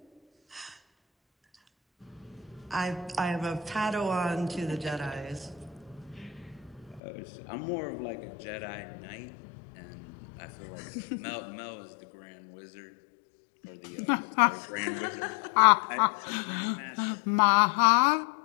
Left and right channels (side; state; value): right; drops out; at 7.0 s